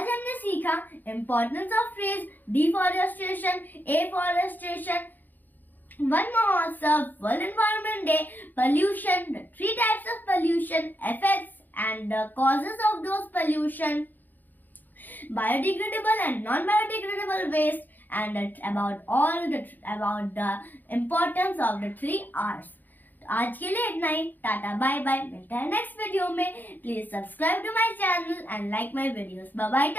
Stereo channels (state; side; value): late; right; 0.086 ms